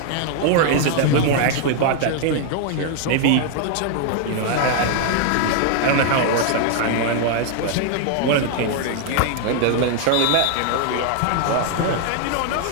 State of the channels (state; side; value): different; both; correlation 0.00